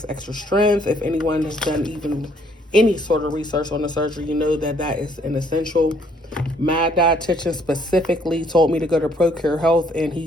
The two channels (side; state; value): both; normal; correlation 0.65